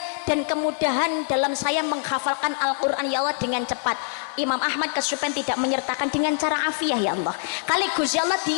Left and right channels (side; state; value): right; silent; digital silence